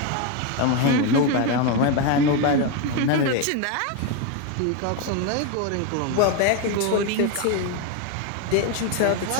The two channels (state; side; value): different; both; correlation 0.02